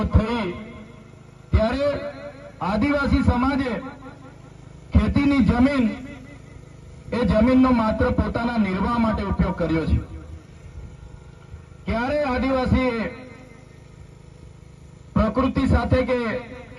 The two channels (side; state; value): both; identical; correlation 1.00